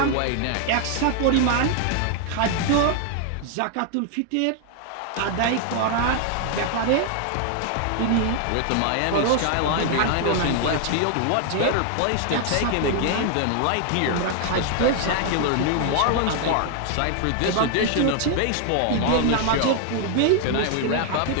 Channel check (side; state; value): both; different; correlation 0.00